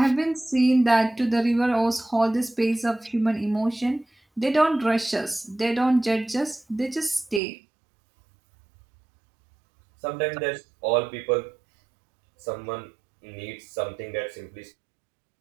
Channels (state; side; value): drops out; left; at 7.4 s